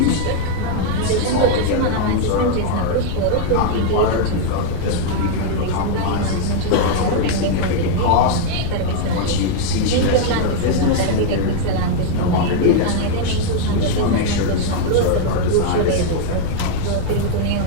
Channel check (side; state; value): both; different; correlation 0.00